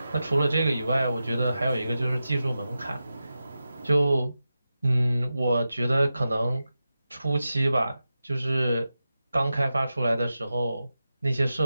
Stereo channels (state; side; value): inverted; both; correlation -0.92